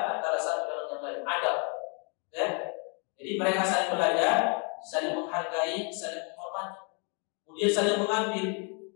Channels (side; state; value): right; quieter; 36.5 dB